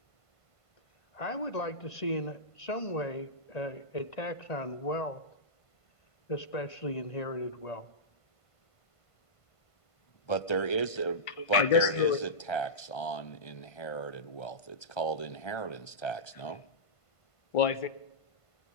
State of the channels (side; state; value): right; late; 1.5 ms